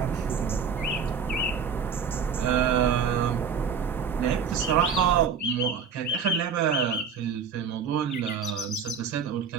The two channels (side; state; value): left; quieter; 6.3 dB